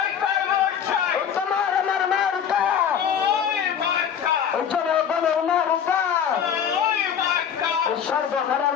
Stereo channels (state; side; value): quieter; right; 8.2 dB